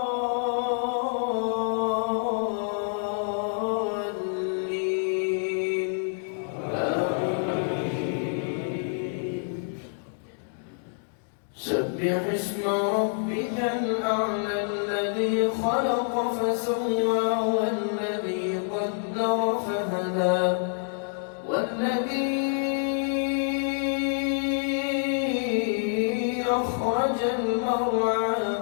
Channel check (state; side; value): silent; right; digital silence